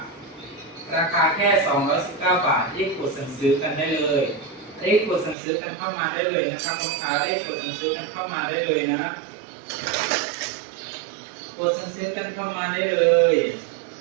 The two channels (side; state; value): left; drops out; at 5.4 s